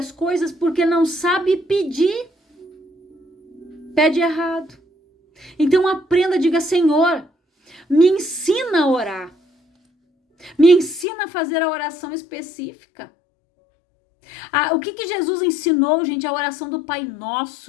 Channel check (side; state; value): right; drops out; at 11.1 s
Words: coisas porque não sabe pedir. Pede errado. Então aprenda, diga: Senhor, me ensina a orar. Me ensina a fazer a oração específica. O que Jesus ensinou, gente? A oração do Pai